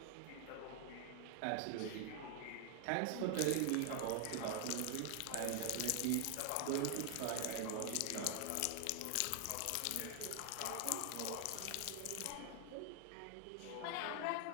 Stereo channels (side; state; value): both; different; correlation 0.00